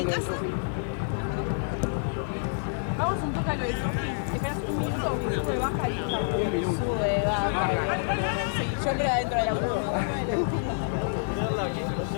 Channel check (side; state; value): right; silent; 60 dB below the other